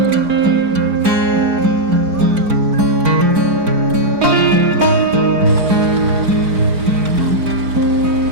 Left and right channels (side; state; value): left; late; 4.4 ms